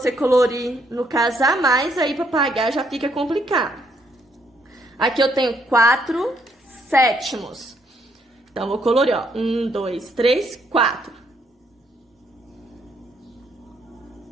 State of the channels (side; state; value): both; normal; correlation 0.71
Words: colorir, no caso, a mais, aí pra pagar já fica complicado. Aqui eu tenho 4 sétimos. Então, eu vou colorir, ó. 1, 2, 3, 4.